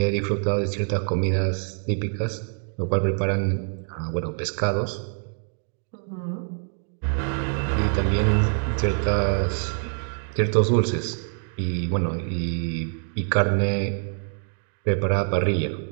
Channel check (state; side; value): silent; left; 58 dB below the other